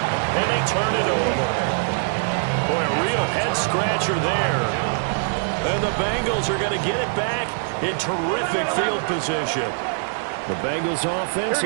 and they turn it over. Boy, a real head-scratcher there. And the Bengals are going to get it back in terrific field position. The Bengals offense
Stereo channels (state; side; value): silent; left; 64 dB below the other